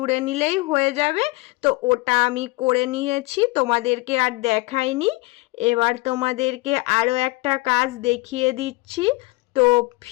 নিলেই হয়ে যাবে। তো ওটা আমি করে নিয়েছি, তোমাদেরকে আর দেখাইনি। এবার তোমাদেরকে আরও একটা কাজ দেখিয়ে দিচ্ছি। তো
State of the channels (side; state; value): right; quieter; 23.5 dB